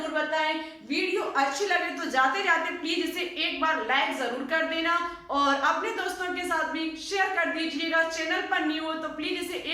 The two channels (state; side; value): identical; both; correlation 1.00